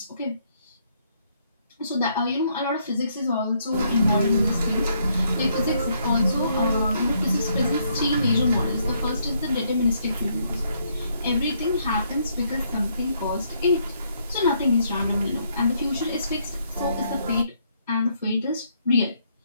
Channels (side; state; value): both; inverted; correlation -0.72